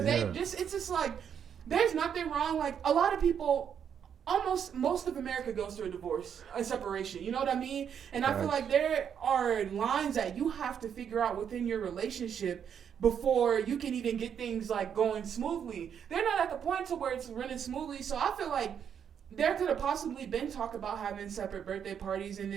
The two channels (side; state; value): left; quieter; 8.1 dB